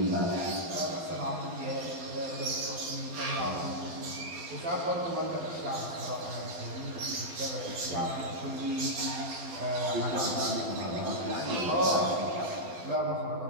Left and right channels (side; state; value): left; late; 12 ms